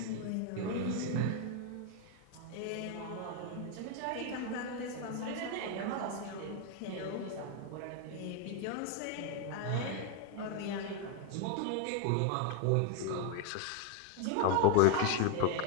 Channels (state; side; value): different; both; correlation 0.01